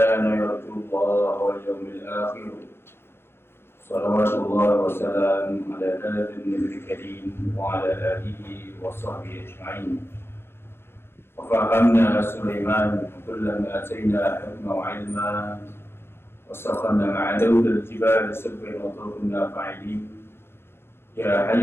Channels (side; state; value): right; late; 0.11 ms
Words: يرجو الله واليوم الآخر. صلوات الله وسلام على هذا النبي الكريم وعلى آله وصحبه أجمعين. وفهمنا سليمان كلما آتينا حكما وعلما وسخرنا مع داود الجبال سبحا وطرقنا فاعلين. يا